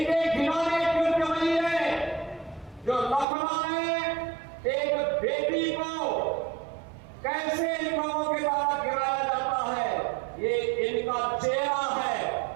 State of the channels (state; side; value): drops out; left; at 3.2 s